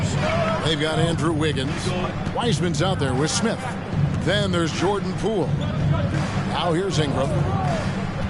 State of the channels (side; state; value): both; identical; correlation 1.00